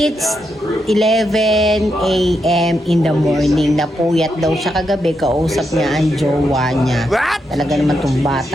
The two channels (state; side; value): normal; both; correlation 0.83